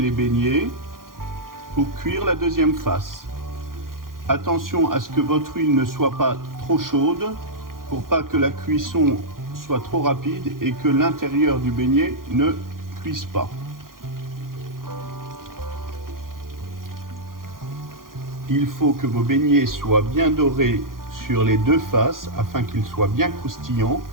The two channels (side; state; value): left; late; 0.91 ms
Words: beignets pour cuire la deuxième face. Attention à ce que votre huile ne soit pas trop chaude pour pas que la cuisson soit trop rapide et que l'intérieur du beignet ne cuise pas. Il faut que vos beignets soient bien dorés sur les deux faces afin qu'ils soient bien croustillants.